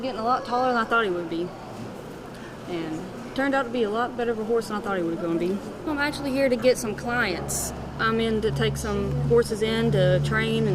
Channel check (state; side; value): identical; both; correlation 1.00